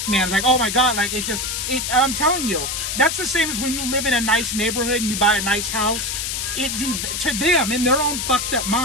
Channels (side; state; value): left; noise; hiss, 2 dB below the sound